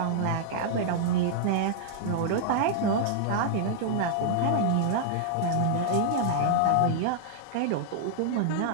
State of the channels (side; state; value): both; different; correlation -0.01